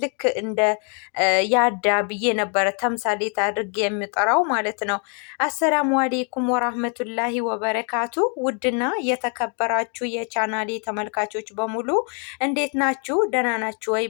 ልክ እንደ ያዳ ብዬ ነበረ ተምሳሌት አድርጌ የሚጠራው ማለት ነው። አሰላሙ አሌይኩም ወራህመቱላሂ ወበረካቱ። ውድና የተከበራችሁ የቻናሌ ተመልካቾች በሙሉ እንዴት ናችሁ? ደህና ናችሁ ወይ?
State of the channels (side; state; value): right; quieter; 39.8 dB